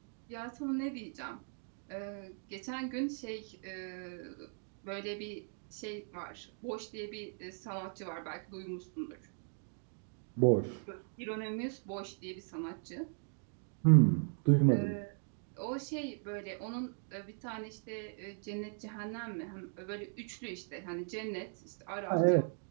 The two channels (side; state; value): left; silent; 52 dB below the other